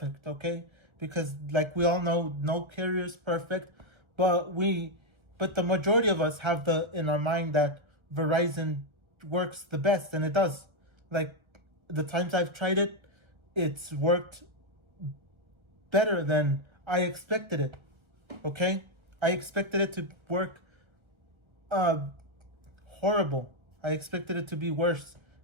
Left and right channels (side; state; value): left; late; 1.3 ms